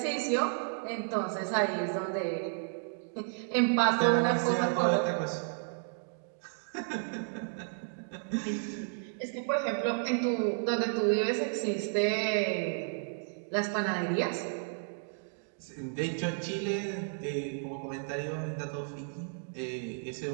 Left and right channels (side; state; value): left; silent; digital silence